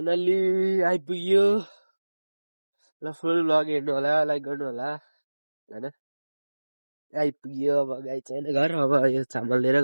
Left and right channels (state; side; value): inverted; both; correlation -1.00